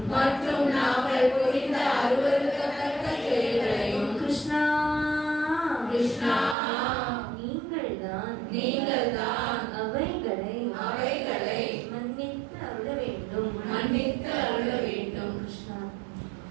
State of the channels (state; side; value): drops out; left; at 6.6 s